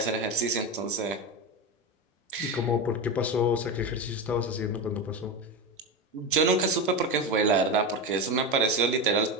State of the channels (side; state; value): both; normal; correlation 0.19